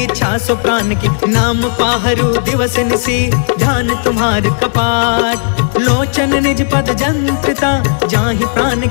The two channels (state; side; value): silent; right; digital silence